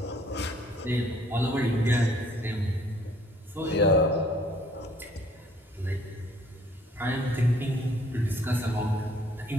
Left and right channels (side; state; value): both; normal; correlation 0.60